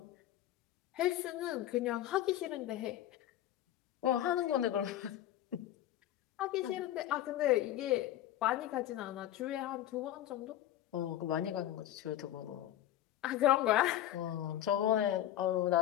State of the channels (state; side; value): quieter; right; 12.9 dB